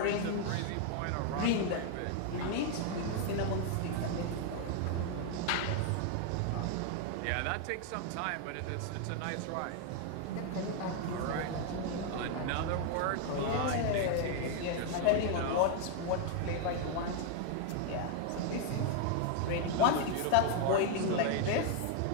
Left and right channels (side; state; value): both; different; correlation 0.00